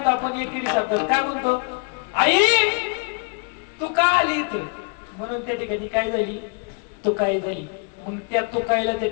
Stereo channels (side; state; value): right; quieter; 35.6 dB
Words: आपण एकेरी शब्दात काय म्हणतो? आई तू का आली इथं? म्हणून त्या ठिकाणी काय झाली? तू काय झाली. मग त्या तुकाईला त्या